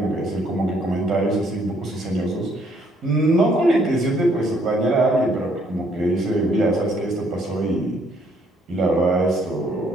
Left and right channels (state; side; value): normal; both; correlation 0.67